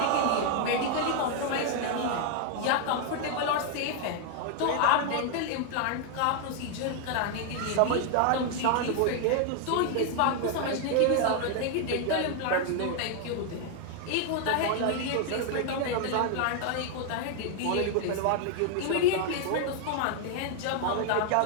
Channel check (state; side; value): different; both; correlation 0.00